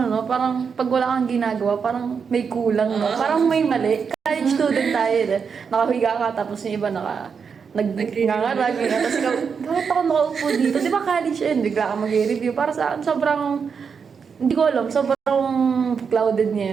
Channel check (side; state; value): left; quieter; 6.1 dB